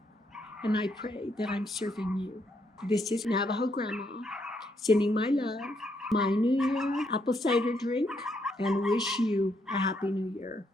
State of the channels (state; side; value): normal; both; correlation 0.75